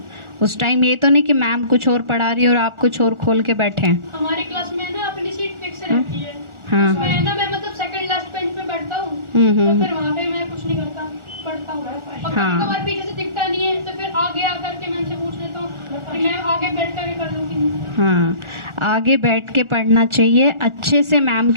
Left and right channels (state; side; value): late; left; 1.4 ms